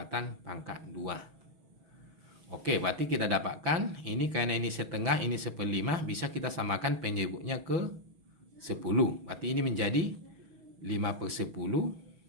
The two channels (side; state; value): left; late; 6.2 ms